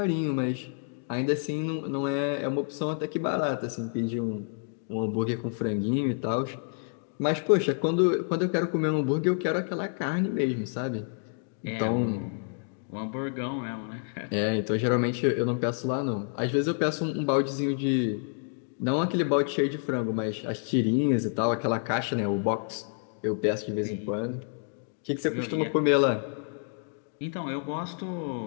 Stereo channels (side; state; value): right; silent; 58 dB below the other